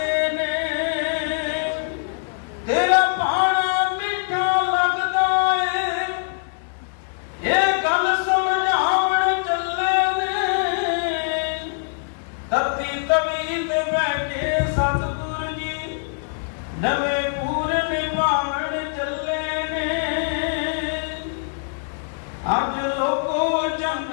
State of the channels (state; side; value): silent; right; digital silence